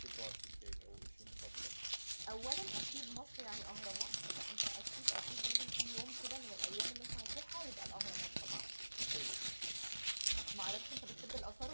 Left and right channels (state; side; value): inverted; both; correlation -1.00